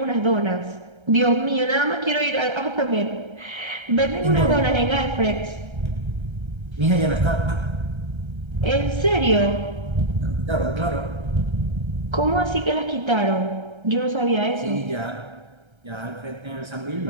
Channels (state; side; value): late; left; 1.3 ms